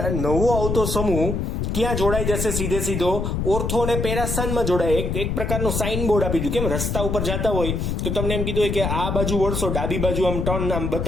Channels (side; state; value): left; noise; rumble, 1 dB below the sound